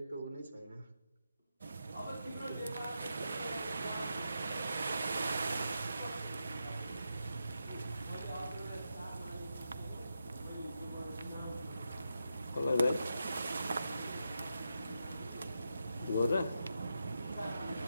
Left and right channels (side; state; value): both; inverted; correlation -0.86